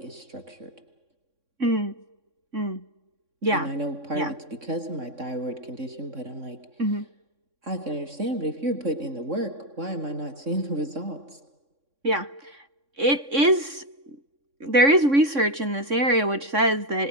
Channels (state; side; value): late; left; 3.6 ms